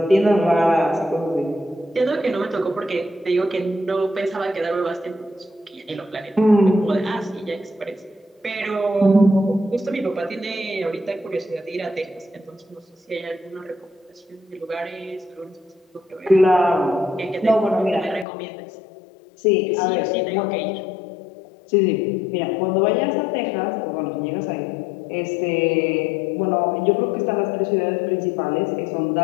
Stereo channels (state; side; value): drops out; right; at 18.2 s